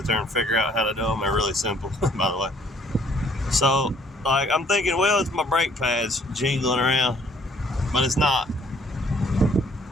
there and figure out how to do them. They're really simple, by the way. So, like, I'm thinking, well, it's my brake pads jingling around, but it's not.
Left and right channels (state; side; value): normal; both; correlation 0.61